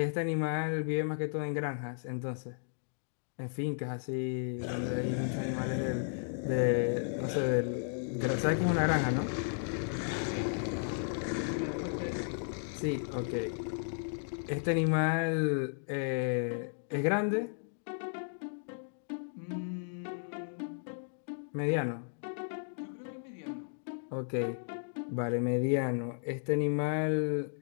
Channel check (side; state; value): right; silent; digital silence